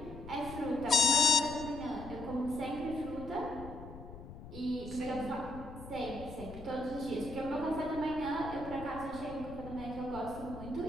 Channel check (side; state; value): left; noise; rumble, 13 dB below the sound